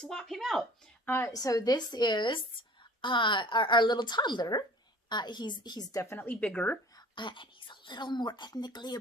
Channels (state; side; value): normal; both; correlation 0.47